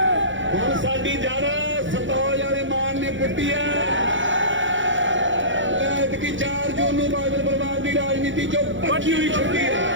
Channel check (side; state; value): left; late; 0.55 ms